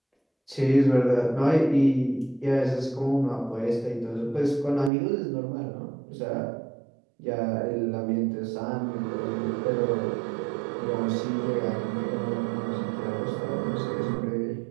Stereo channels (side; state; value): left; drops out; at 4.9 s